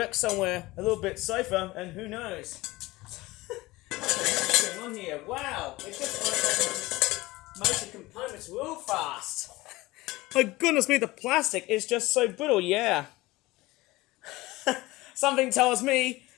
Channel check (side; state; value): right; quieter; 19.9 dB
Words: somewhere a little bit safer, and who knows. What's going on here? Wow, it just motor components real fast. My goodness me, the plastic is just so brittle, yeah. Something tells me